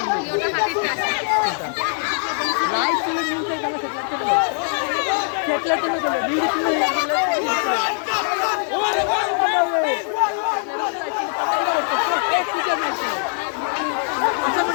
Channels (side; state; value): right; silent; 64 dB below the other